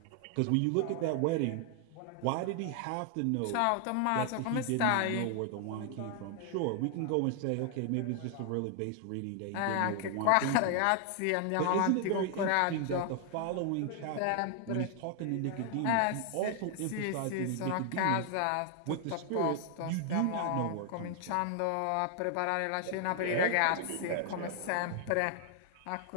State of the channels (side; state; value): both; different; correlation 0.00